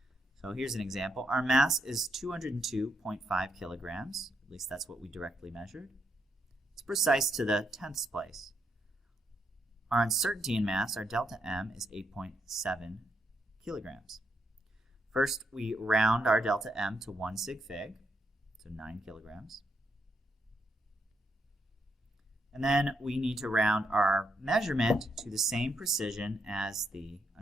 So here's an example. Our mass is 202.5 kilograms. At least that's what we directly measured. It's precise to the 10th place. Our uncertainty in mass, our delta M, is 8.7 kilograms. First, we round our delta M to 1 sig fig, so 9 kilograms. And then we need to round our measurement to the same precision as the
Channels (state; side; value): normal; both; correlation 0.78